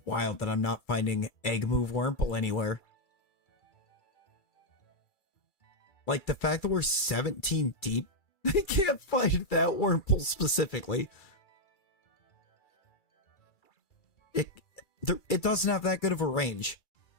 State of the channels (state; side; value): late; right; 2.3 ms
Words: wild that I'm not finding Egg Move Wurmple anywhere. Like, the fact that we're 17 deep, I can't find that Wurmple specifically. It doesn't have that good of a range.